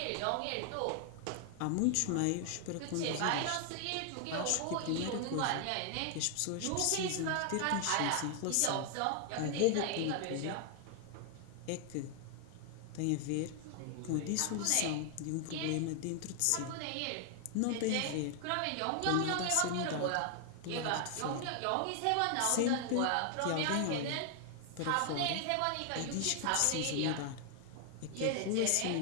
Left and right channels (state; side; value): different; both; correlation 0.00